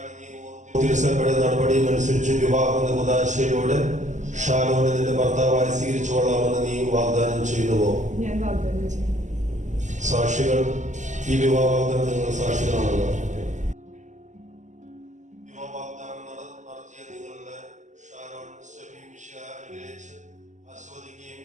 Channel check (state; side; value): late; left; 0.35 ms